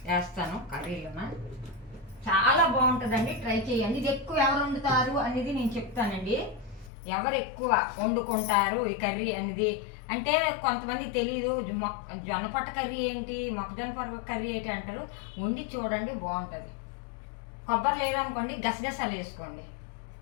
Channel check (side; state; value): right; drops out; at 6.9 s